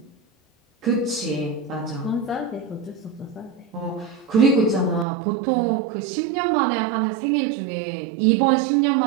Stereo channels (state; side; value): drops out; left; at 5.1 s